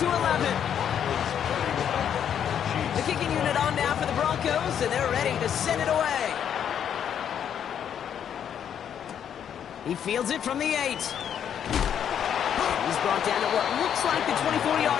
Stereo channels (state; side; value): quieter; right; 8.9 dB